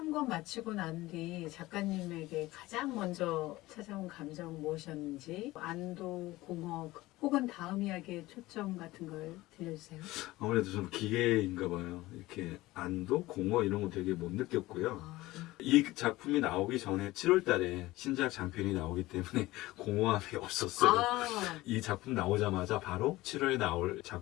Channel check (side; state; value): right; quieter; 18.5 dB